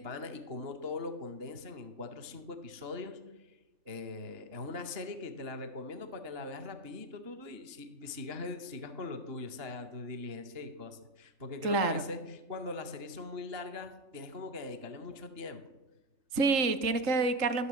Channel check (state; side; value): late; left; 3.7 ms